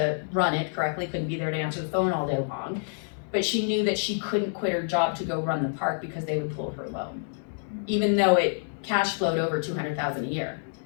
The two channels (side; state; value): right; silent; digital silence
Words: run it correctly, couldn't be there to answer the phone all day long. But she knew that she couldn't quit her job to go run the park because they would pull her loan. Even though it cash flowed over $200,000 a year.